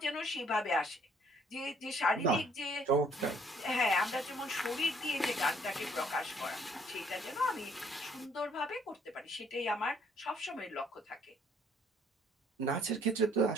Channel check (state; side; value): normal; both; correlation 0.64